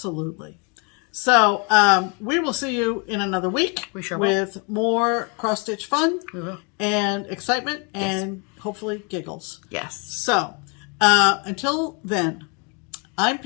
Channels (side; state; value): right; quieter; 32.9 dB